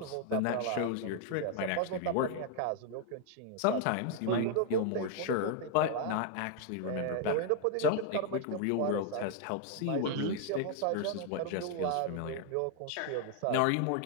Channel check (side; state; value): both; different; correlation 0.00